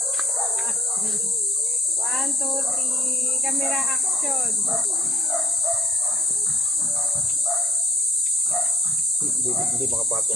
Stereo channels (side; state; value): both; normal; correlation 0.63